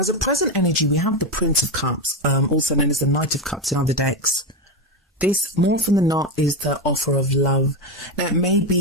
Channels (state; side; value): normal; both; correlation 0.12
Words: a present energy, we have the Prince of Cups, also known as the Knight of Cups in other decks. This, more often than not, is the offer of love. Now, it may